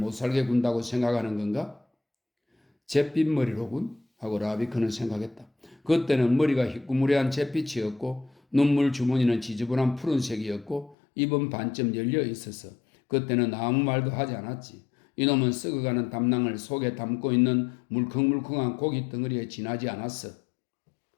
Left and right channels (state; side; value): drops out; right; at 11.0 s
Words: 살게 군다고 생각하는 건가? 잿빛머리로군? 하고 라비크는 생각했다. 그때는 머리가 희꾸무레한 잿빛이었고 눈물 주머니는 지저분한 푸른색이었고 입은 반쯤 열려 있어서 그때는 아무 말도 하지 않았지. 이놈은 썩어가는 담낭을 속에 담고 있는 물컹물컹한 고기 덩어리에 지나지 않았어.